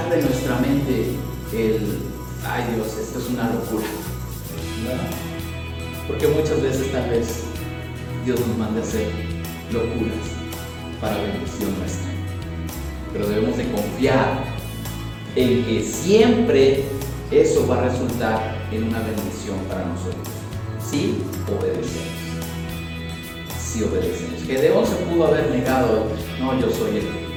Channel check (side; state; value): both; identical; correlation 1.00